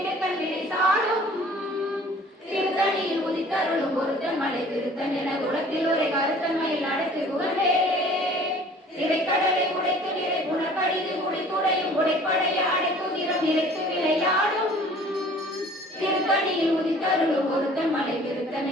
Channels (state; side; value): normal; both; correlation 0.50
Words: விடை சாடும் திருத்தணியில் உதித்தருளும் பொருத்தன் மலை விருத்தன் என உலகத்தில் ஒரு கருத்தன்மையில் நடத்தி புகழ்வேலே திரைக்கடலை உடைத்து நிறை புனர்கடிது குடித்துடையும் உடைப்படைய அடைக்குதிரம் நிறைத்து விளையாடும் திருத்தணியில் உதித்தருளும் பொருத்தன் மலை விருத்தன்